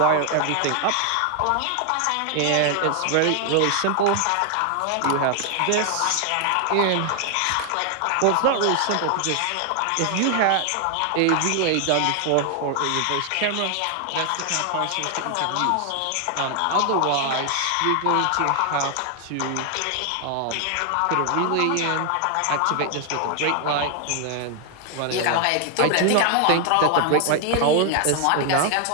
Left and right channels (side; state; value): both; different; correlation 0.00